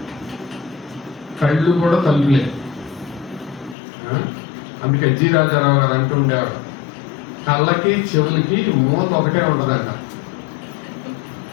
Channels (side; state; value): right; drops out; at 3.8 s